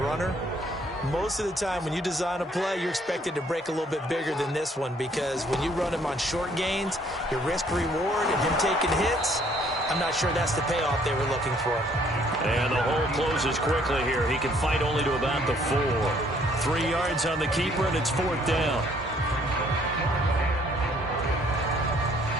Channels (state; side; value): normal; both; correlation 0.63